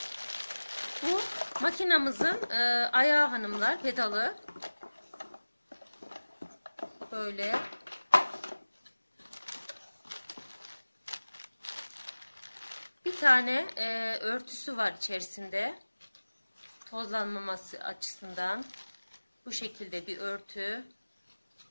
bu makinamızın ayağı hanımlar, pedalı böyle bir tane örtüsü var içerisinde, tozlanmaması açısından bu şekilde bir örtü.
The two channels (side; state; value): both; inverted; correlation -1.00